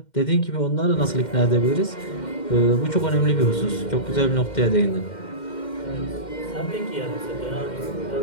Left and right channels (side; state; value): right; late; 2.1 ms